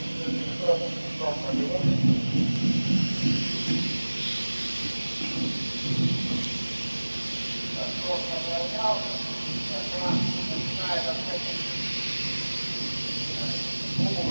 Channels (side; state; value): both; inverted; correlation -1.00